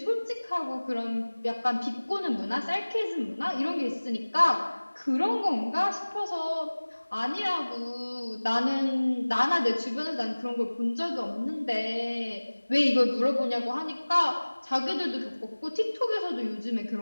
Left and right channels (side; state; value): both; inverted; correlation -1.00